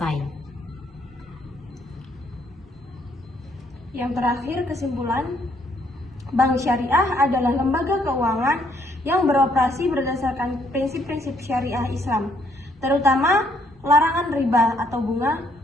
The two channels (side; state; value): both; normal; correlation 0.69